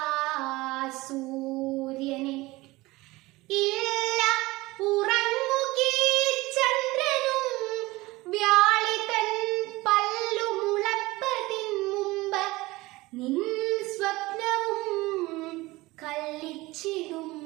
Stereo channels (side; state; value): left; quieter; 20.5 dB